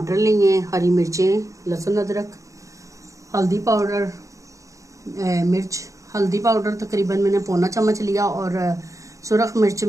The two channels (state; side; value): late; left; 0.15 ms